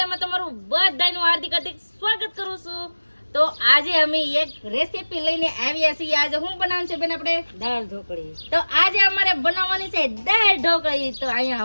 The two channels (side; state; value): both; inverted; correlation -1.00